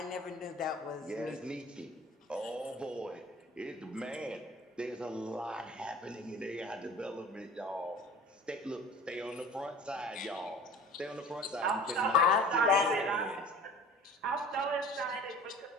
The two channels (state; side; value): normal; both; correlation 0.42